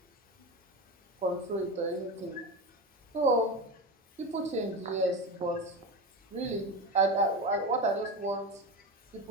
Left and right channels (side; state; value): both; normal; correlation 0.22